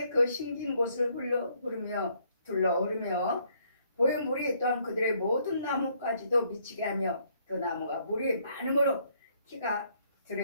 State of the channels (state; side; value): inverted; both; correlation -0.68